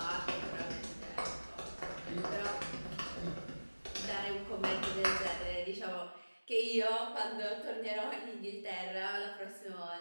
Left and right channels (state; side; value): inverted; both; correlation -1.00